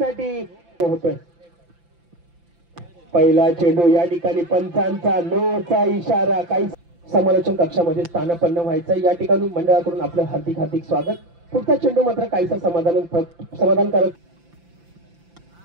होतोय. पहिला चेंडू या ठिकाणी पंचांचा नोचा इशारा. काही समालोचन कक्षामध्ये स्थानापन्न व्हायचं या ठिकाणी मंडळाकडून आपलं हार्दिक हार्दिक स्वागत. पुढचा चेंडू मात्र काहीसा समाधानकारक.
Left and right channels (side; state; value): left; late; 5.9 ms